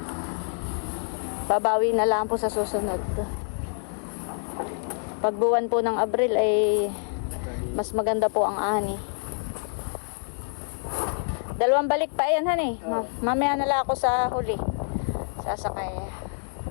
Babawi na lang po sa susunod. Pag buwan po ng Abril ay mas maganda po ang ani. 2 balik pa yan, honey. Mamaya na lang ako sa huli. Sasakay.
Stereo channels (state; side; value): silent; right; 60 dB below the other